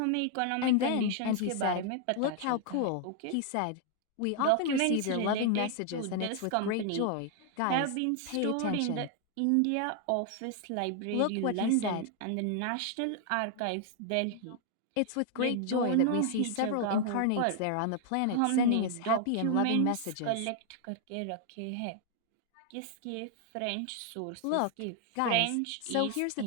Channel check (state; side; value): different; both; correlation 0.00